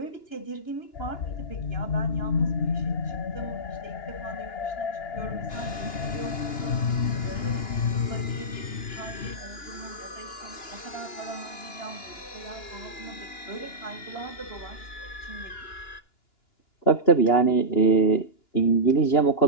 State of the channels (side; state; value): right; late; 2.9 ms